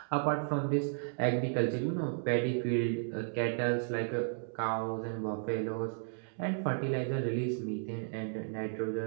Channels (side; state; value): left; silent; digital silence